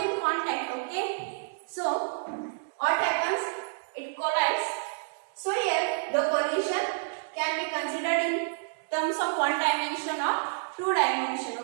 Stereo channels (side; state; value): left; silent; 58 dB below the other